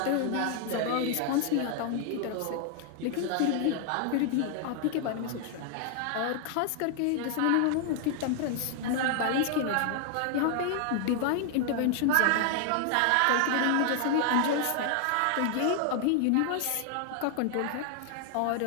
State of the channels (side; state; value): both; different; correlation 0.00